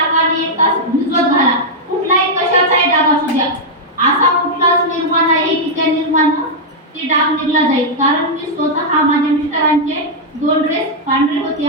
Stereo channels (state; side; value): normal; both; correlation -0.04